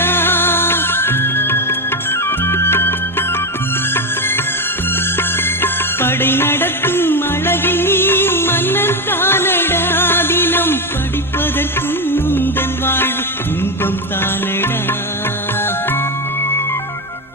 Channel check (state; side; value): normal; both; correlation 0.12